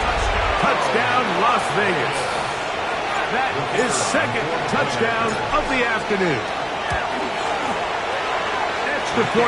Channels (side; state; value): both; identical; correlation 1.00